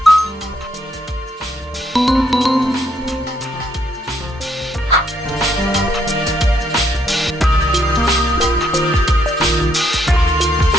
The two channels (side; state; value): both; normal; correlation 0.73